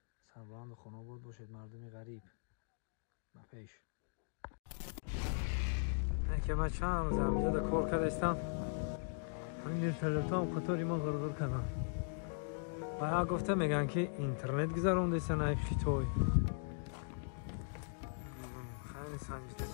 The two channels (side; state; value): right; silent; digital silence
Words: سربلند خانه بود باشید مردم غریب با پیش. که من چند روز همینجا در کار کردستم، همین اینترنت هم خطوری ما غرغر کردم. باید گفته میگن که اینترنت گذارون دیستن ای خیتوی خیلی سنجیده